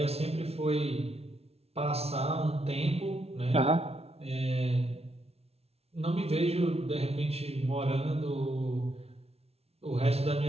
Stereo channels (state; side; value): late; left; 0.30 ms